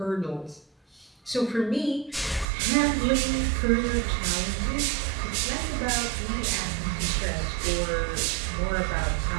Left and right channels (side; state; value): left; drops out; at 2.5 s